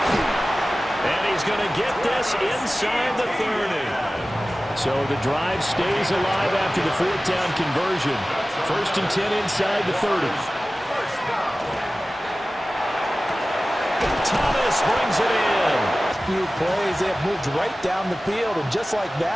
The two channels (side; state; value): both; normal; correlation 0.96